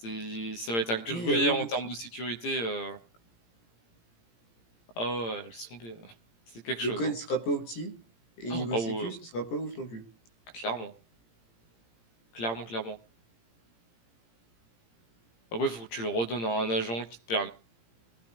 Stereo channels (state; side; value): late; right; 17 ms